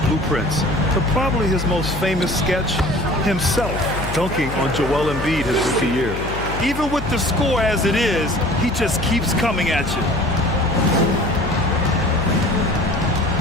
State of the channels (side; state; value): left; noise; hum, 8 dB below the sound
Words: blueprints. But probably his most famous sketch, himself dunking on Joel Embiid his rookie year. Even with the score as it is, he just keeps coming at you.